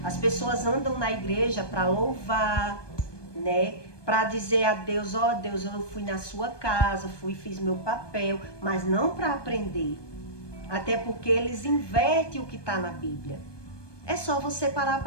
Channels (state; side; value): late; right; 1.2 ms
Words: As pessoas andam na igreja para louvar, né? Para dizer a Deus: ó Deus, eu fui na sua casa, fiz meu papel, mas não para aprender. Até porque eles invertem o que está na Bíblia. É só você parar